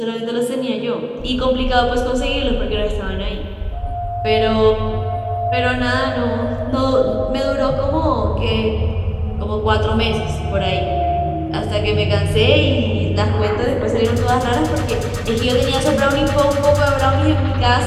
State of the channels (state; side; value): identical; both; correlation 1.00